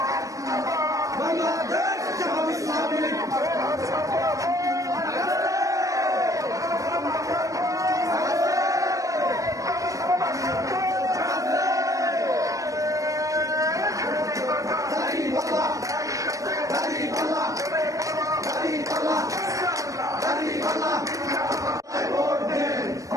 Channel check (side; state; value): left; late; 0.16 ms